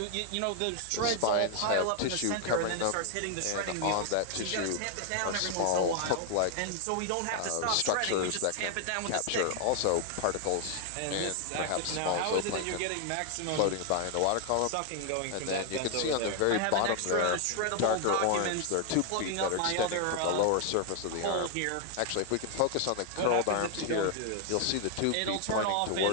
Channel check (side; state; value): both; different; correlation 0.00